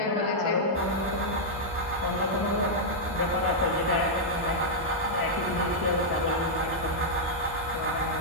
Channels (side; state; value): both; normal; correlation -0.06